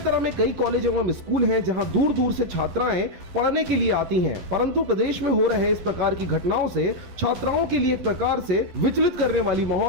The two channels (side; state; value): left; late; 11 ms